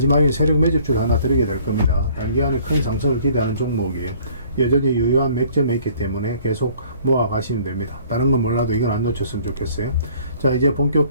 세력 매집주를 하나 드리게 될 겁니다. 단기간에 큰 상승을 기대하는 종목이에요. 여전히 유효한 맥점에 있기 때문에 계속 모아가시면 됩니다. 다른 건 몰라도 이건 안 놓쳤으면 좋겠어요. 자, 이제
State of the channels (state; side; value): inverted; both; correlation -0.55